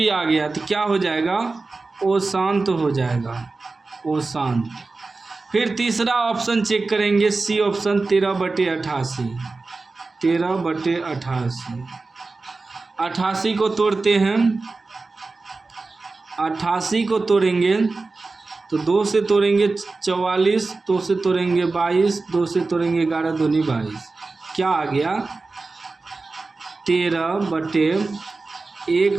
आ गया, तो क्या हो जाएगा, वो शांत हो जाएगा, वो शांत। फिर तीसरा ऑप्शन चेक करेंगे, सी ऑप्शन 13/88, 13/88। 88 को तोड़ते हैं, 88 को तोड़ेंगे तो 2 से तोड़ेंगे 44, 2 से तोड़ेंगे 22, 2 से तोड़ेंगे 11 दूनी 22। क्या आ गया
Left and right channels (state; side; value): quieter; left; 3.7 dB